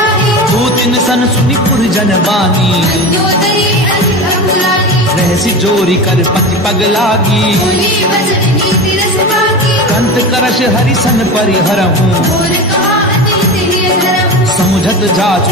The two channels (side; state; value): both; normal; correlation 0.27